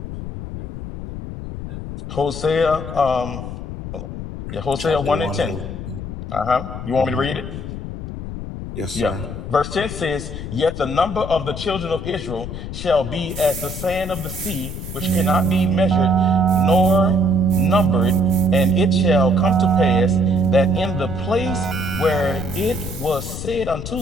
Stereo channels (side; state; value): left; noise; rumble, 8 dB below the sound